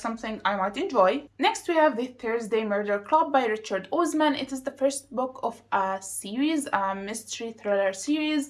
I might enjoy. Next, we have The Thursday Murder Club by Richard Osman. It is the first book of a series, a mystery thriller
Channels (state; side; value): identical; both; correlation 1.00